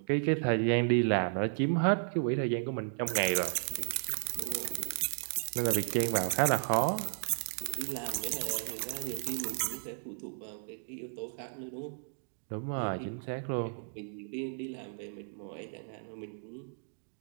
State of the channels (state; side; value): silent; left; digital silence